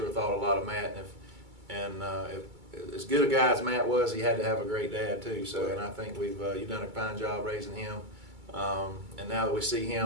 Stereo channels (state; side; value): late; left; 2.3 ms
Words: thought a lot of Matt, and if as good a guy as Matt was, he had to have a great dad too. So, and I think you've done a fine job raising him. And now that we see